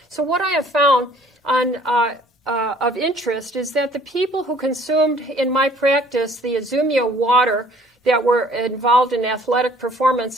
So what I have found of interest is that the people who consumed in my practice the IZUMIO water that were involved in athletic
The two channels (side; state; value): both; normal; correlation 0.57